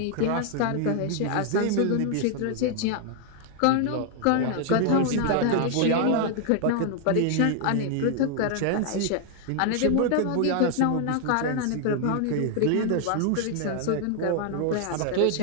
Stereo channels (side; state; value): both; different; correlation 0.00